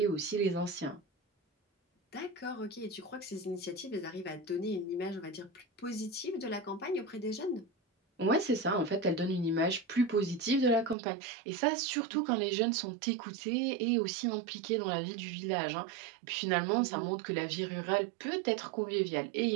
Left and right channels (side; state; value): left; drops out; at 11.0 s